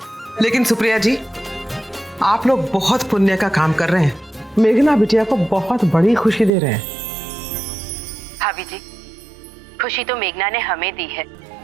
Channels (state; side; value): drops out; left; at 6.5 s